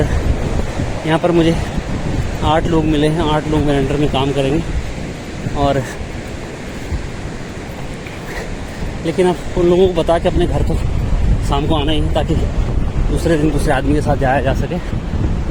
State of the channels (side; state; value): both; identical; correlation 1.00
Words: यहाँ पर मुझे 8 लोग मिले हैं, 8 लोग मेरे अंडर में काम करेंगे। और लेकिन अब उन लोगों को बता के अपने घर तो शाम को आना ही है, ताकि दूसरे दिन दूसरे आदमी के साथ जाया जा सके।